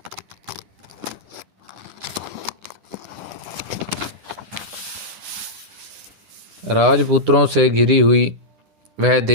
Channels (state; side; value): late; left; 10 ms